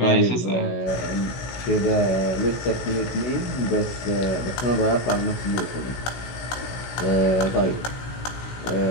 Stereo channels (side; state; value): right; late; 16 ms